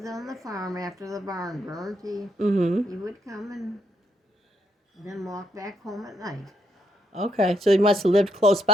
on the farm after the barn burned. He would come and then walk back home at night. Okay, so he must have lived close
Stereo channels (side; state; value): both; normal; correlation 0.74